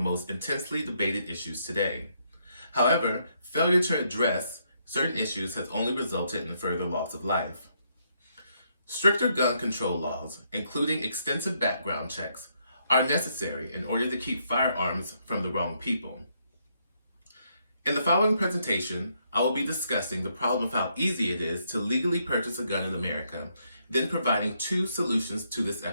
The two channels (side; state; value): both; inverted; correlation -0.75